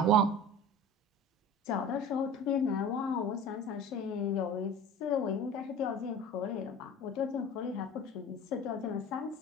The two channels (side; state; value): both; normal; correlation 0.38